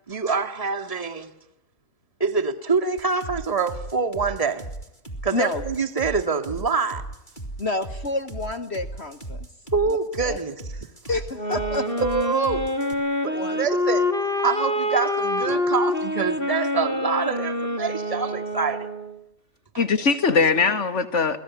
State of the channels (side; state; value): right; late; 2.3 ms